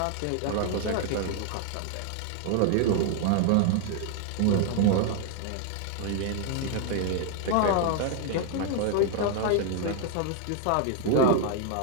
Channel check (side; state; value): both; different; correlation 0.00